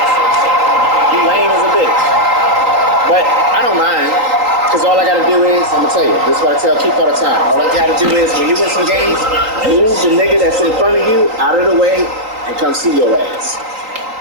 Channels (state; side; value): late; left; 3.9 ms